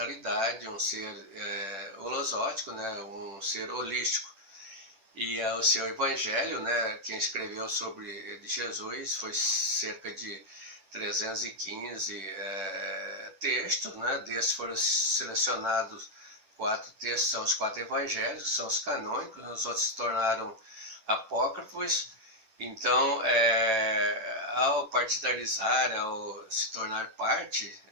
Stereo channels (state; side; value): late; left; 10 ms